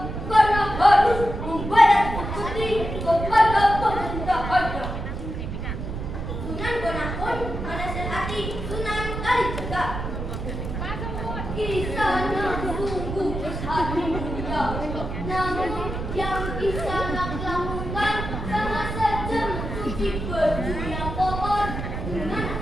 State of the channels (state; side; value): noise; right; rumble, 5 dB below the sound